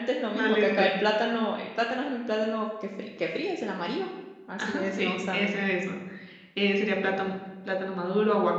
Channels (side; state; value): both; identical; correlation 1.00